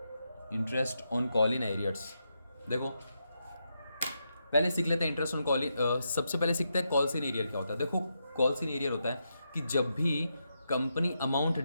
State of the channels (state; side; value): inverted; both; correlation -0.84